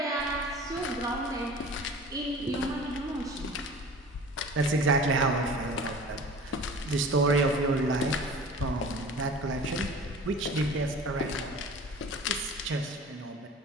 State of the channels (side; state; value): both; normal; correlation 0.41